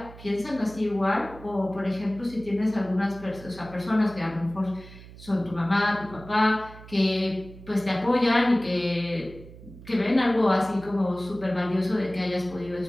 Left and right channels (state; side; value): noise; right; hum, 18 dB below the sound